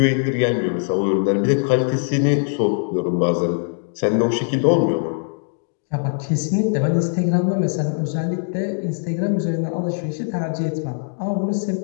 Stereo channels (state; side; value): silent; right; digital silence